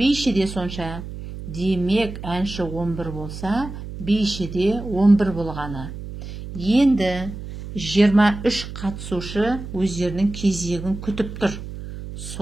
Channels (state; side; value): noise; right; hum, 10 dB below the sound